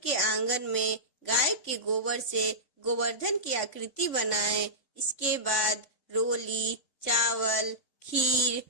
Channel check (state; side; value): late; right; 3.6 ms